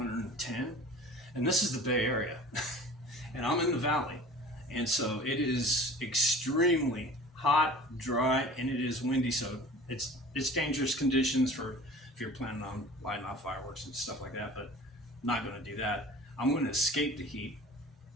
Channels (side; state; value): both; normal; correlation 0.42